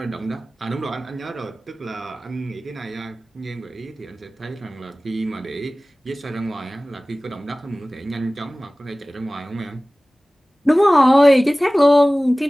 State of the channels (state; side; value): normal; both; correlation 0.98